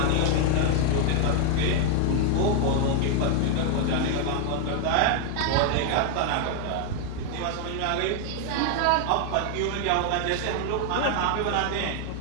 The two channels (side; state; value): both; different; correlation 0.00